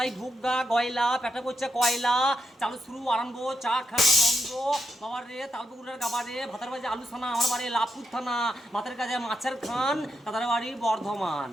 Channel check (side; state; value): both; normal; correlation 0.83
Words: ঢুকগা গয়লা, পেটে পড়ছে কয়লা, চালু শুরু আরম্ভ, চা খাওয়া বন্ধ। বাবার রে তালপুকুরের গাবা রে, ভাতার বাজে আলু থানা, আমার বাড়ি লাভপুর থানা, ভাতের কাজে মাছের খান, তাদের বাড়ি বর্ধমান।